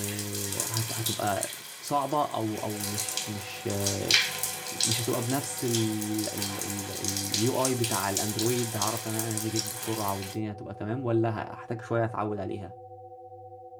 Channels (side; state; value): both; identical; correlation 1.00